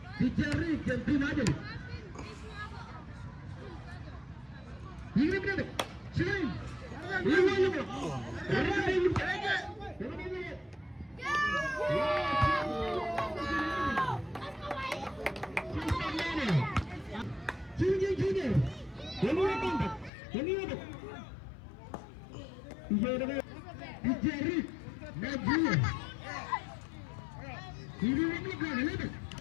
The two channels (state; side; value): drops out; right; at 20.1 s